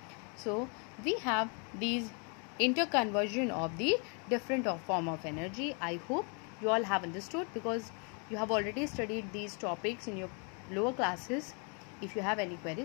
So we have these interconversion of the different form of energy. I hope you all have understood, because you have already studied these topics in your lower classes. If you have any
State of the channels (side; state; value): right; quieter; 37.0 dB